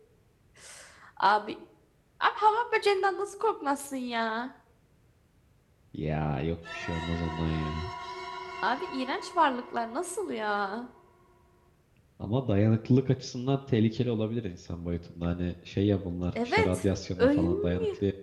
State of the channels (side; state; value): both; identical; correlation 1.00